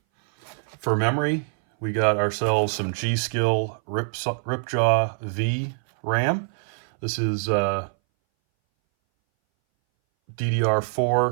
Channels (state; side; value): silent; left; 60 dB below the other